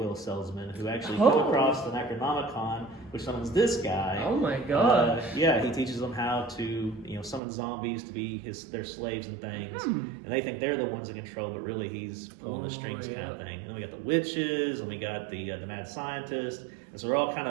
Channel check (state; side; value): drops out; left; at 7.4 s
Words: salesmen who actually come across the Necronomicon, which summons this guy. Oh my god! Yeah, he teaches them how to summon zombies to be their slaves and things, and they think they're the ones in control, but really he's pulling the strings kind of thing. And then we got the witches, and we got the mad scientist. And so we're all kind